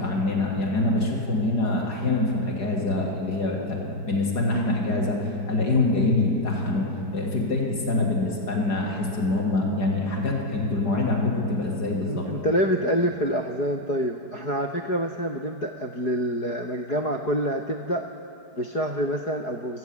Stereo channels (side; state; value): right; late; 4.9 ms